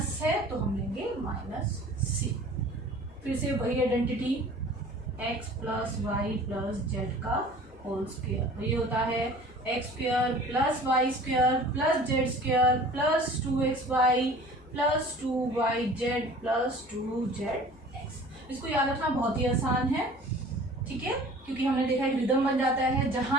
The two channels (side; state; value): left; noise; hum, 24 dB below the sound